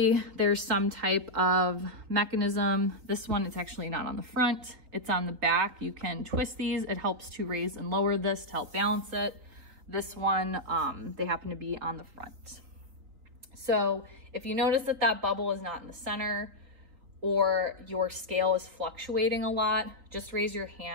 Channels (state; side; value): late; left; 4.1 ms